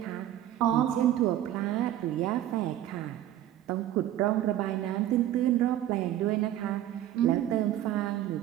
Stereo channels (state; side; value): quieter; left; 12.5 dB